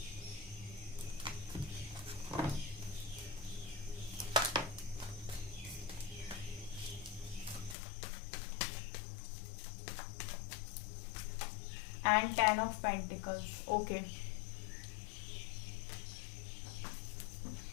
And 10 of pentacles. Okay,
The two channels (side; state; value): right; drops out; at 7.8 s